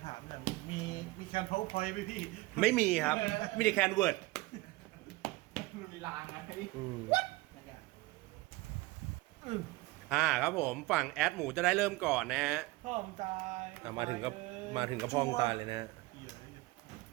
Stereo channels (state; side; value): quieter; left; 21.1 dB